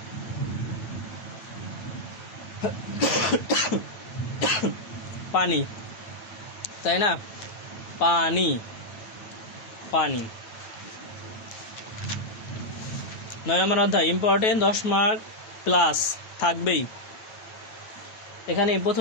পানি, তাই না, পানি পানি 9 নম্বর অধ্যায় ইম্পর্টেন্ট, 10 মার্ক প্লাস থাকবেই। এখানে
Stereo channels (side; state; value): right; late; 9.0 ms